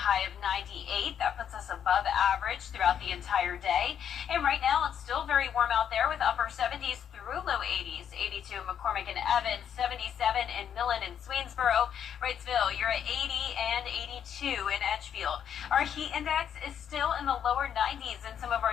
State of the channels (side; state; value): right; quieter; 8.8 dB